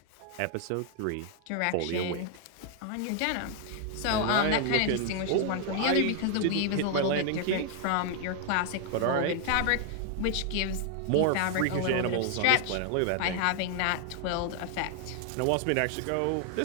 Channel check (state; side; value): different; both; correlation 0.00